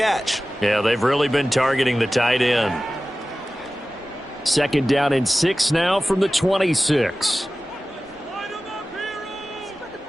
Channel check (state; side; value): normal; both; correlation 0.96